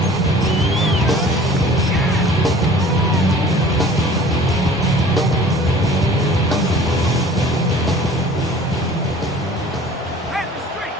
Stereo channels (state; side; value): normal; both; correlation 0.47